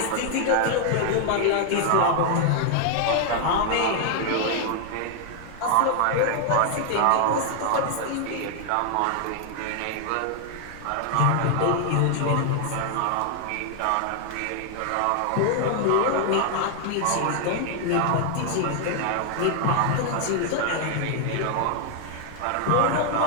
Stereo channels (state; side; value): different; both; correlation 0.00